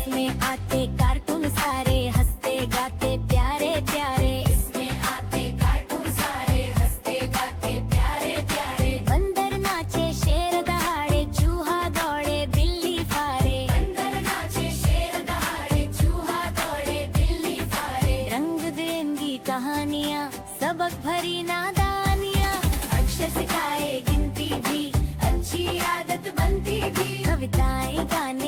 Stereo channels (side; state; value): both; identical; correlation 1.00